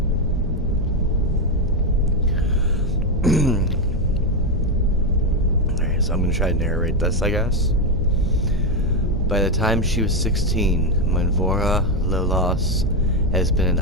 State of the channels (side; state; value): both; normal; correlation 0.06